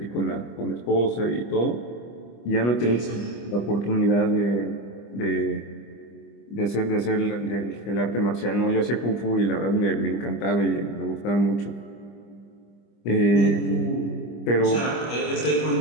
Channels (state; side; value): late; right; 25 ms